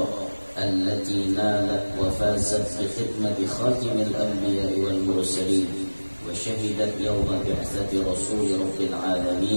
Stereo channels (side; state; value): both; inverted; correlation -1.00